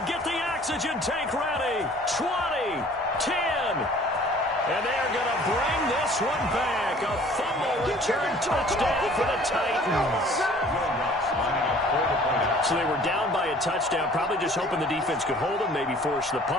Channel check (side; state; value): both; normal; correlation 0.52